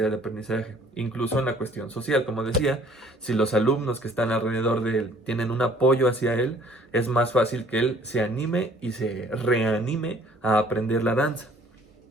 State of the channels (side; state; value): both; normal; correlation 0.56